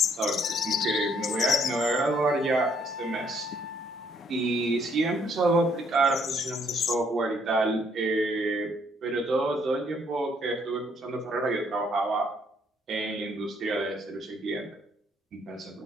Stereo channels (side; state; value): both; normal; correlation 0.67